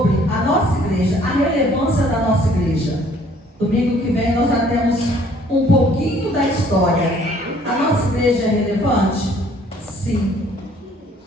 a nossa igreja, a relevância da nossa igreja. Domingo que vem nós já temos um pouquinho da história. A nossa igreja é relevante? Sim.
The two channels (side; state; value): both; normal; correlation 0.59